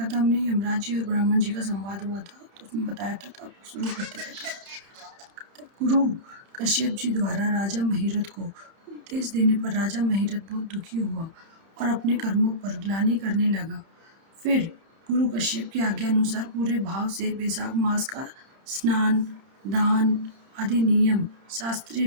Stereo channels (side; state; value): left; late; 31 ms